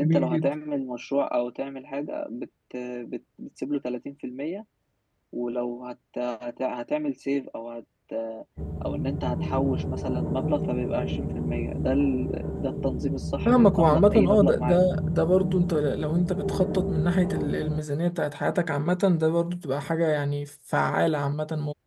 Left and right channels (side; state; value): both; identical; correlation 1.00